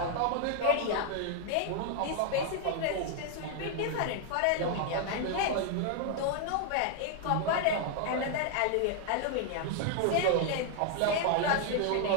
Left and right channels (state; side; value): different; both; correlation 0.00